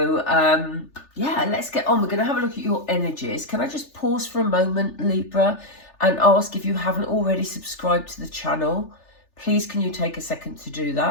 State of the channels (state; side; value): late; right; 3.4 ms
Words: yeah, let's get on. We're going to have a look at your energies. Can I just pause for a moment, Libra, and ask if you haven't already subscribed to the channel? Please, can you take a second to do